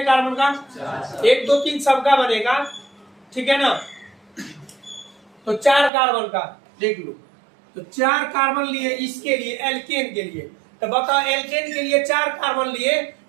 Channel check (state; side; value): drops out; left; at 5.9 s